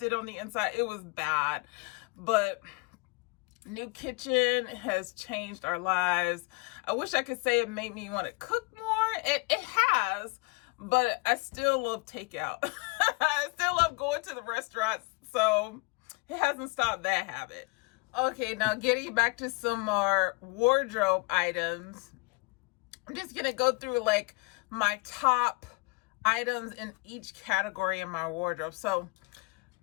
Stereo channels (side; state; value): right; quieter; 26.8 dB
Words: on the inside. It was bad, but new kitchen has changed our lives. I wish I could say it made me want to cook more. It has, but I still love takeout. I still love going to the restaurants, so it hasn't stopped that habit. Okay, now getting back to some more wardrobe items. I'm just gonna go through like my top items in each category in my wardrobe. So